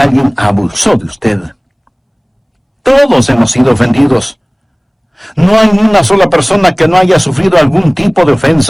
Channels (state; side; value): identical; both; correlation 1.00